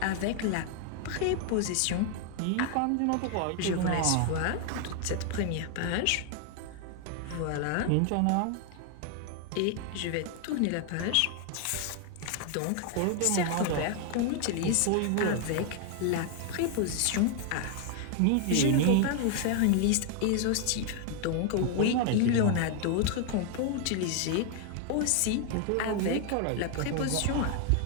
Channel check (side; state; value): both; different; correlation 0.00